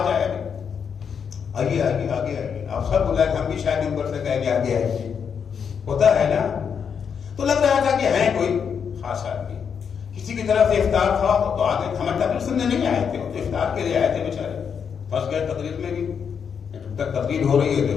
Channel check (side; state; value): right; quieter; 7.0 dB